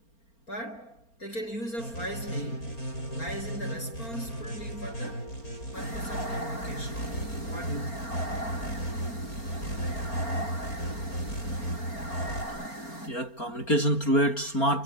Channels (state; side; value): late; right; 4.4 ms